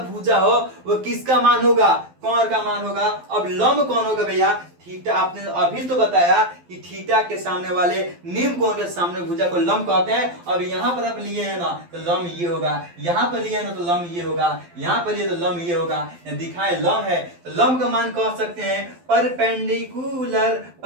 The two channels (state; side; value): late; left; 12 ms